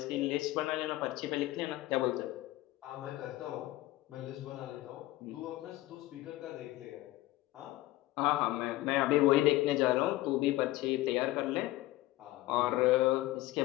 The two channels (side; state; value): right; quieter; 17.3 dB